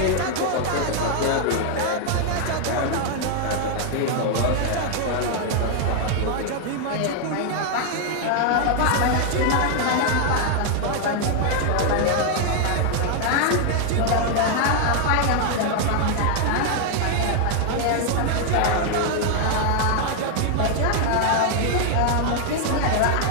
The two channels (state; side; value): different; both; correlation 0.00